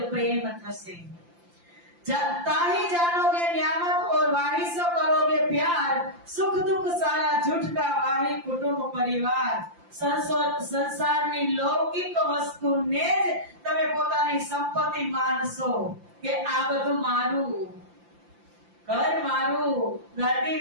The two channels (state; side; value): late; left; 5.8 ms